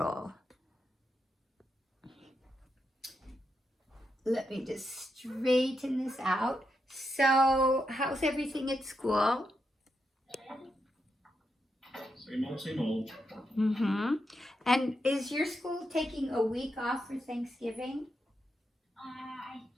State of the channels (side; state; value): both; normal; correlation 0.84